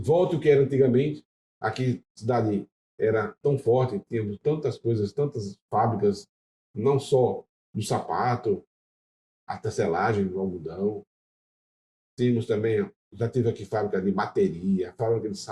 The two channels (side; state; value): both; identical; correlation 1.00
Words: o que era antigamente. Aqui, a cidade era tão forte, tínhamos tantas coisas, tantas fábricas, não só do sapato, a tecelagem, do algodão. Tínhamos também, já tive aqui fábrica de bateria, fábrica de